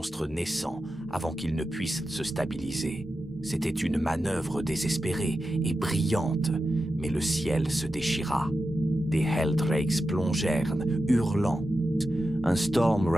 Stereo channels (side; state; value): both; normal; correlation 0.91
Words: naissants avant qu'ils ne puissent se stabiliser. C'était une manœuvre désespérée et brillante, mais le ciel se déchira. Des Helldrakes plongèrent, hurlant. Un Storm